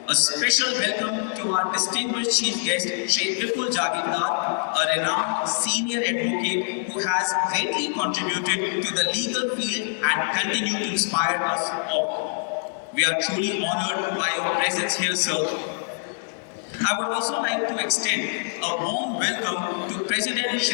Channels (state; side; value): silent; right; digital silence